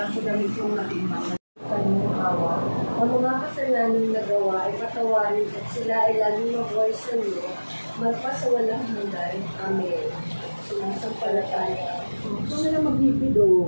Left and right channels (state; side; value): inverted; both; correlation -1.00